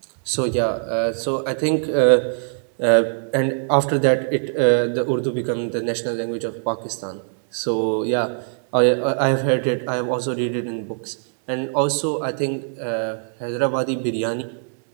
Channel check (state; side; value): silent; left; 64 dB below the other